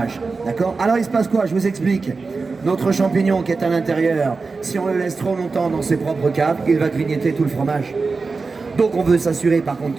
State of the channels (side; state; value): left; quieter; 4.2 dB